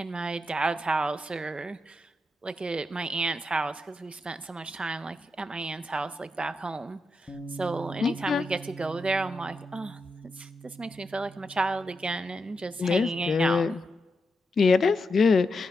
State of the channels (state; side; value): normal; both; correlation 0.86